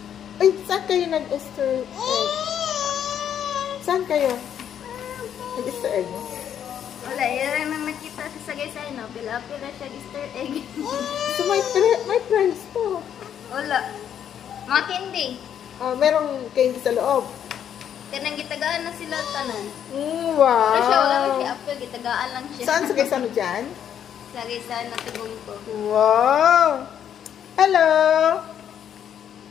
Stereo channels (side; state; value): right; quieter; 9.2 dB